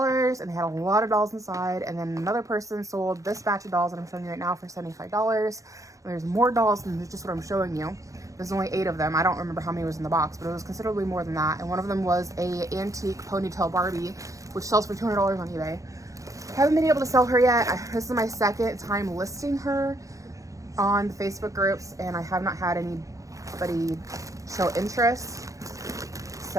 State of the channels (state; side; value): late; left; 0.16 ms